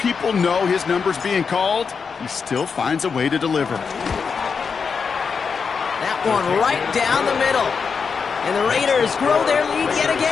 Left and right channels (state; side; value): quieter; right; 5.7 dB